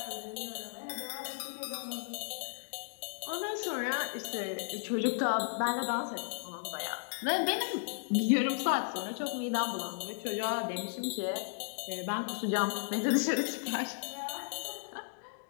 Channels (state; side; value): silent; right; digital silence